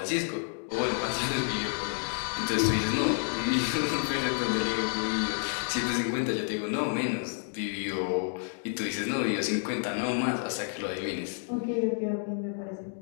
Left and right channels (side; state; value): right; silent; digital silence